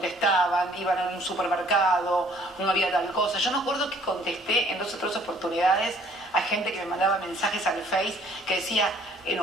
iban a un supermercado, no había tal cosa. Yo me acuerdo que contesté en 2 o 3 oportunidades a gente que me mandaba mensajes al Face que decía,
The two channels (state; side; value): normal; both; correlation 0.59